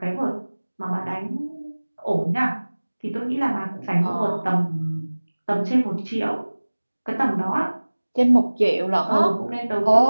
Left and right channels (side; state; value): both; inverted; correlation -1.00